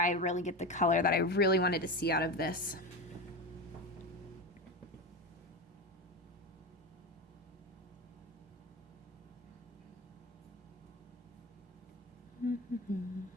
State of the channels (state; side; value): normal; both; correlation 0.21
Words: really get the color that I really wanted to see out of this.